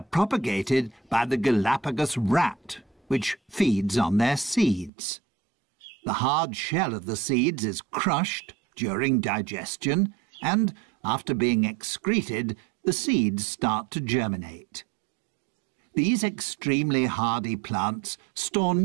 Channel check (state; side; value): drops out; left; at 4.9 s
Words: propagated by the Galapagos rat, which feeds on their seeds. The hard shell of the seeds is crushed during digestion, and after being excreted, the seeds start to germinate. These extremely hardy plants store